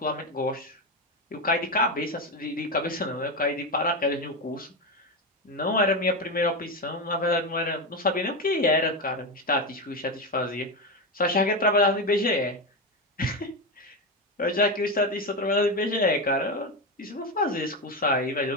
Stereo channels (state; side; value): normal; both; correlation 0.14